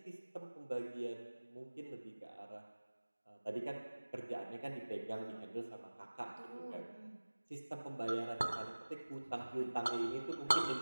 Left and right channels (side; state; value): both; inverted; correlation -1.00